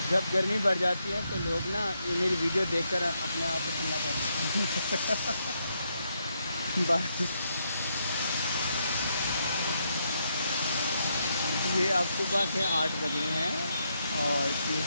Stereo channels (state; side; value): inverted; both; correlation -0.78